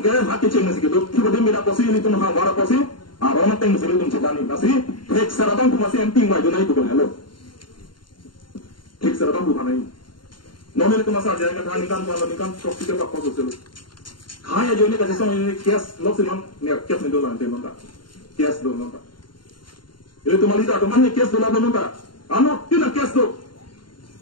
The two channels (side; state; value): right; late; 0.72 ms